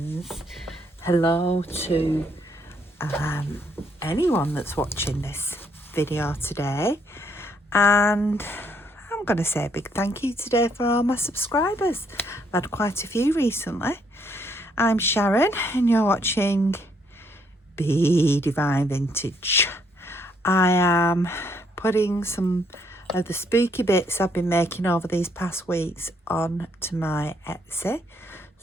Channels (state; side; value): normal; both; correlation 0.70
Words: Hello to anyone that's watching this video today. And I'm going to say a big thank you today for all my subscribers. I've had quite a few recently. I'm Sharon and you're watching Be Divine Vintage. I am putting some of the spooky bits I've been making over these past weeks on to my Etsy.